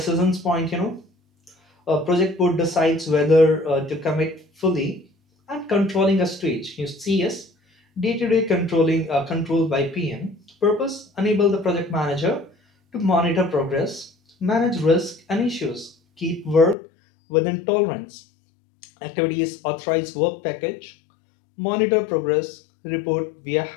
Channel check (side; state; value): right; drops out; at 16.8 s